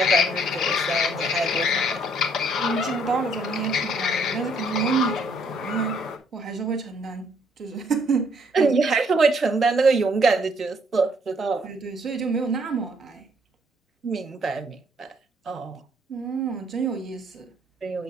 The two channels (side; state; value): both; normal; correlation 0.66